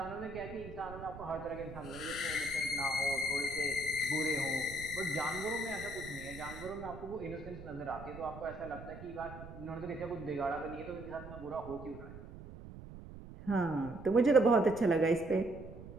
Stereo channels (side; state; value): right; noise; rumble, 13 dB below the sound